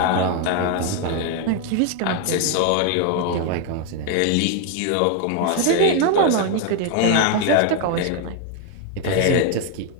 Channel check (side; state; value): both; different; correlation 0.01